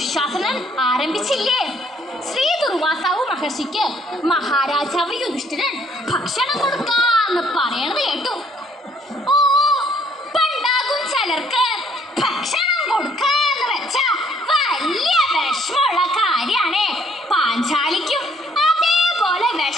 ആരംഭിച്ചില്ലേ? ശ്രീ ദുർവാസാവു മഹർഷിക്ക് മഹാരാജാവ് യുധിഷ്ഠിരൻ ഭക്ഷണം കൊടുക്കാന്ന് പറയണത് കേട്ടു. ഓ, പണ്ടാകും ചിലർക്ക് ഭക്ഷണം കൊടുക്കാന്ന് വെച്ചാ വലിയ വിഷമുള്ള കാര്യാണേ. പാഞ്ചാലിക്കും അതേപോലെ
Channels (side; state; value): both; normal; correlation 0.65